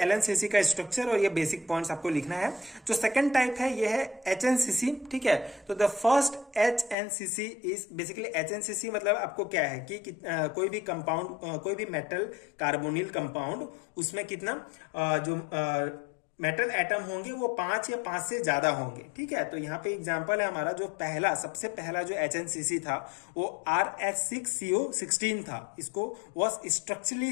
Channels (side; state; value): right; drops out; at 7.0 s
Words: LNCC का स्ट्रक्चर और ये बेसिक पॉइंट्स आपको लिखना है। जो सेकंड टाइप है ये है HNCC। ठीक है, तो the first HNCC is basically HNCC मतलब आपको क्या है कि कोई भी कंपाउंड, कोई भी मेटल कार्बोनिल कंपाउंड, उसमें कितना जो मेटल एटम होंगे वो 5 या 5 से ज्यादा होंगे। ठीक है, तो यहाँ पे एग्जांपल है हमारा जो सबसे पहला जो HNCC था वो RH6CO16 था। इसको वॉज